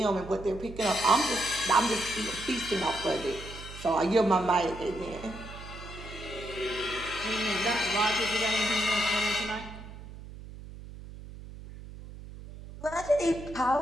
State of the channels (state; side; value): noise; right; hum, 14 dB below the sound